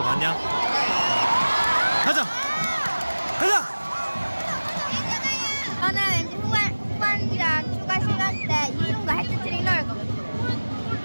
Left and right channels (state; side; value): inverted; both; correlation -1.00